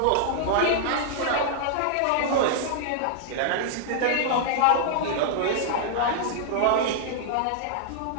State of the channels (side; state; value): both; different; correlation -0.01